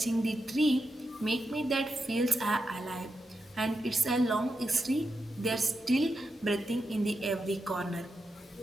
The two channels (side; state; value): both; normal; correlation 0.87